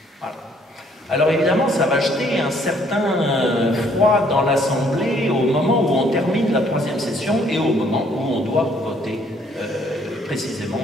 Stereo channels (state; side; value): normal; both; correlation 0.64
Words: Voilà. Alors évidemment, ça va jeter un certain froid dans l'Assemblée au moment où on termine la troisième session et au moment où on doit voter précisément